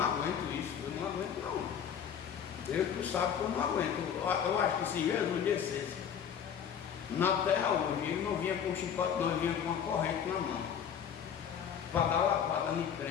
isso, eu não aguento não. Deus tu sabe que eu não aguento. Eu acho que se Jesus descesse na terra hoje, ele não vinha com chicote, não, ele vinha com uma corrente na mão, para dar lapada no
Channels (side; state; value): right; quieter; 8.2 dB